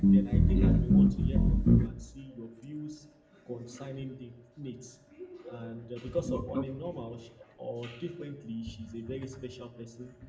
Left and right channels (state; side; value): identical; both; correlation 1.00